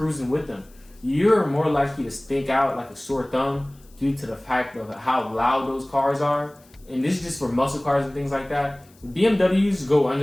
with them, you're more likely to stick out like a sore thumb due to the fact of how loud those cars are. And this is just for muscle cars and things like that. BMWs go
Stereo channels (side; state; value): left; noise; hiss, 29 dB below the sound